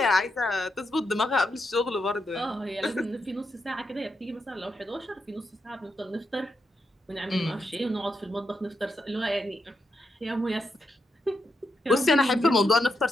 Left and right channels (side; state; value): both; normal; correlation 0.83